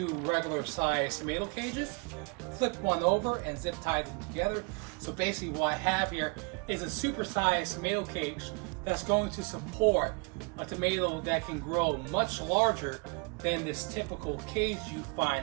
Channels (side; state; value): left; quieter; 32.7 dB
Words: regular size tomato cages, flip one over and zip tie them together. So basically what I have here is a super-sized tomato cage that's going to support a tomato that can grow much larger than this typical cage you